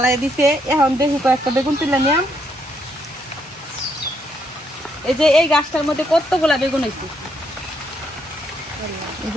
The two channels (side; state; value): both; normal; correlation 0.74